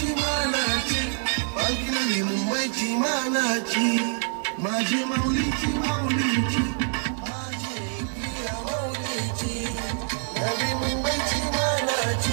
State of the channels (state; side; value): silent; left; 61 dB below the other